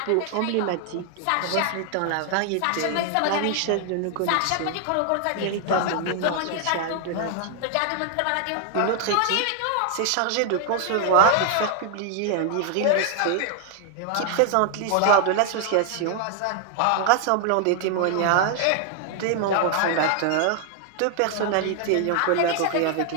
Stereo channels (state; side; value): different; both; correlation 0.00